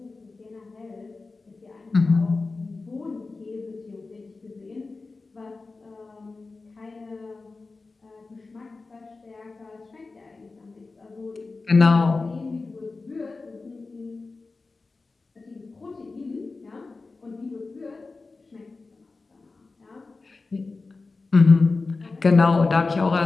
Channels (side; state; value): right; quieter; 3.8 dB